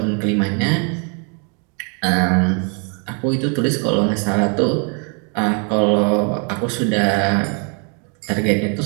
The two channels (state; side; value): quieter; left; 37.8 dB